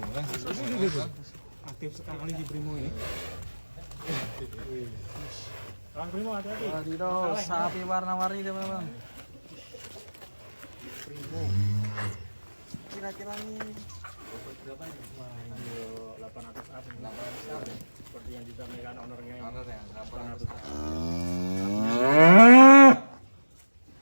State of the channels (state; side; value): inverted; both; correlation -1.00